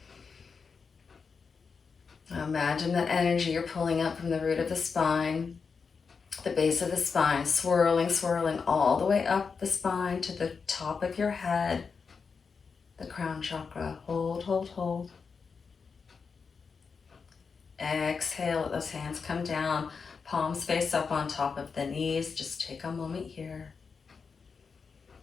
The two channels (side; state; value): right; quieter; 5.4 dB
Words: Imagine that energy you're pulling up from the root of the spine, the base of the spine, swirling, swirling all the way up the spine to the top of your head, the crown chakra. Hold, hold, hold. Exhale, let those hands come down, palms face up on top of the knees. Just take a moment here.